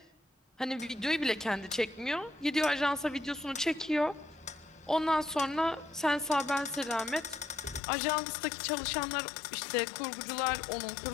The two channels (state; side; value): drops out; right; at 7.8 s